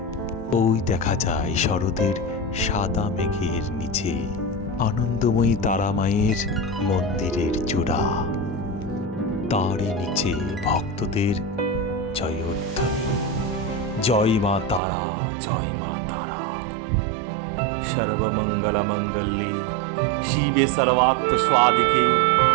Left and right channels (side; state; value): left; drops out; at 14.8 s